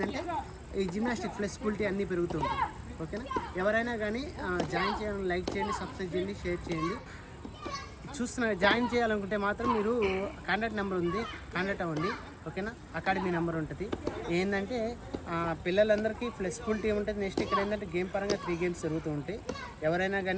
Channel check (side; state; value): both; identical; correlation 1.00